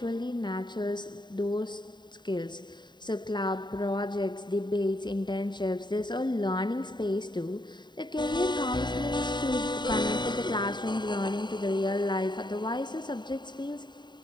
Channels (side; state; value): right; late; 0.22 ms